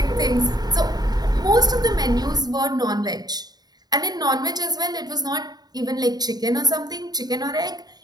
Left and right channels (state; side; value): late; left; 0.19 ms